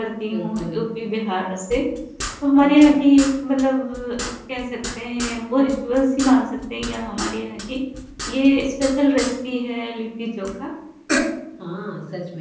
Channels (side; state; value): both; identical; correlation 1.00